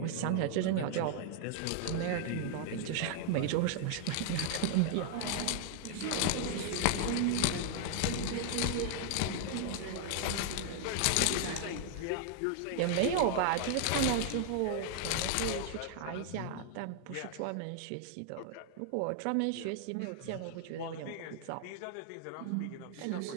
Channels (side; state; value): both; different; correlation 0.00